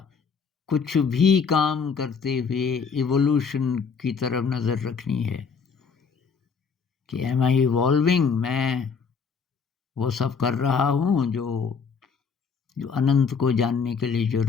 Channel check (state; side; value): quieter; right; 5.7 dB